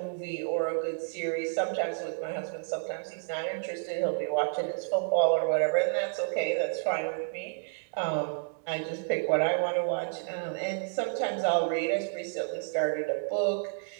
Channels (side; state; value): left; silent; 58 dB below the other